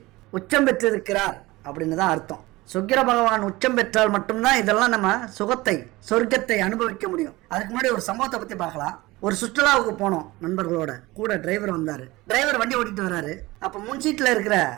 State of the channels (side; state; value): left; quieter; 20.3 dB